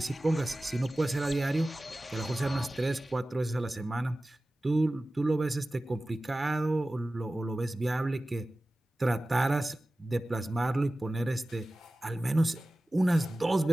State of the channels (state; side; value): normal; both; correlation 0.96